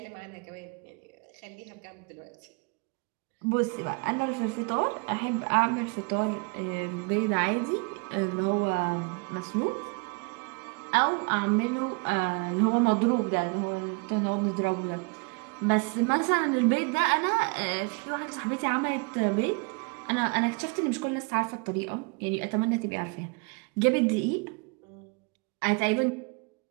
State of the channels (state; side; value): quieter; left; 32.5 dB